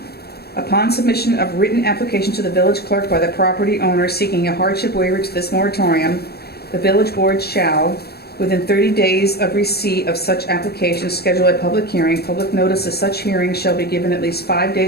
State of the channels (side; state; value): right; late; 0.46 ms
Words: upon submission of written application to the village clerk by the property owner seeking a hardship waiver to this moratorium, the village board shall, within 30 days of receipt of such application, schedule a public hearing. Public notice of such hearing shall be given at least 5